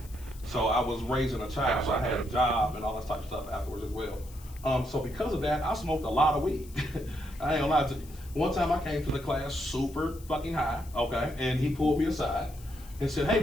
So I was raising a child, so I had a job and all that type of stuff afterwards as well. So because of that, I smoked a lot of weed. I ain't gonna lie to you. One time I came to the class super fucking high, okay, and he pulled me aside and said, "Hey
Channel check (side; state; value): left; noise; hiss, 21 dB below the sound